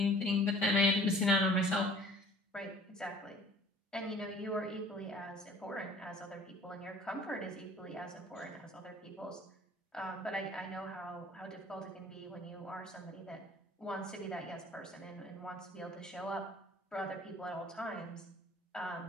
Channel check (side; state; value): both; normal; correlation 0.51